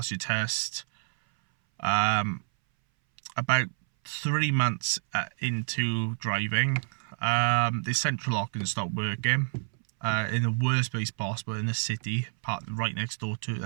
your test, about 3 months into driving, the central locking stopped working, in the worst place possible in the city, parked right next door to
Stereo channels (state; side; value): silent; left; 59 dB below the other